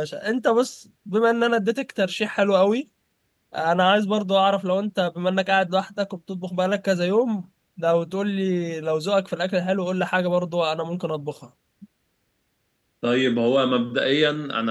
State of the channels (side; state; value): both; identical; correlation 1.00